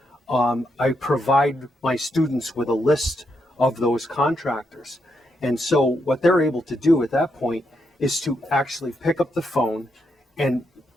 I provide my students with a list of those contractors. And so what they're able to do at that point is to actually pick up the phone and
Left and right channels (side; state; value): both; normal; correlation 0.80